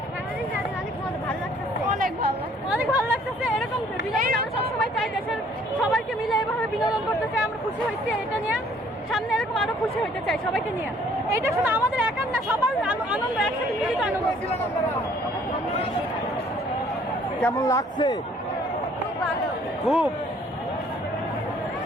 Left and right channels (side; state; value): both; normal; correlation 0.59